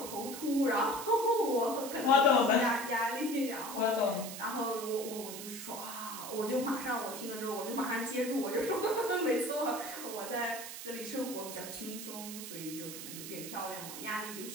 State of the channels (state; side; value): noise; right; hiss, 9 dB below the sound